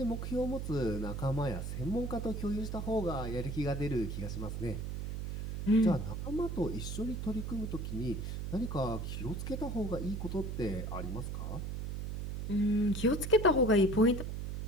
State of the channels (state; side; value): noise; right; hum, 4 dB below the sound